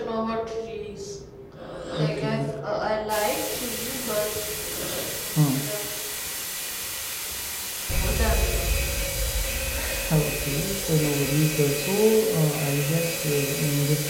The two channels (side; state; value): both; identical; correlation 1.00